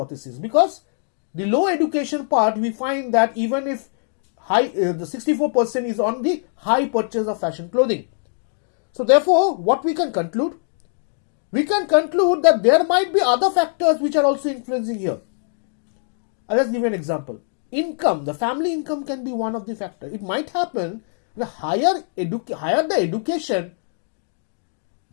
because the low education part, we find that even if the 64% is on the high purchase of fashion clothing. So therefore, what we can conclude? We can conclude that there might be other factors which are also influencing here. I'll just give you an example. Income, the family income can be one of the factors. It might happen the higher the education,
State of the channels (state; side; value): silent; right; digital silence